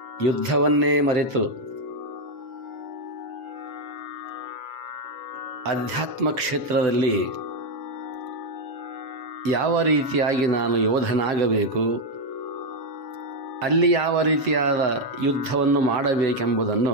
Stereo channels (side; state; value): left; late; 7.5 ms